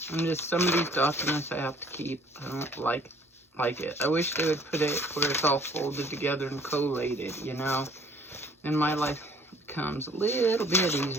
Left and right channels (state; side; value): normal; both; correlation 0.56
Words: And just some of these documents I have to keep. I don't like it. I wish they would put it where it's all folded together and collated, you know. And my life becomes a little bit